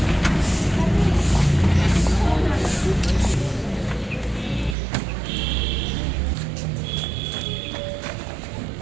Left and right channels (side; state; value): left; drops out; at 4.8 s